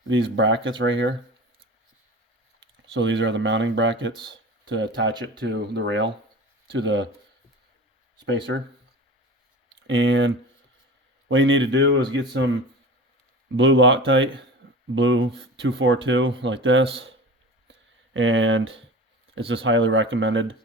these brackets right here. So these are the mounting brackets to attach it to the rail, to the spacer. And what you need to do is get some blue Loctite, blue 242 like this, and it's just highly recommended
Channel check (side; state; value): both; normal; correlation 0.35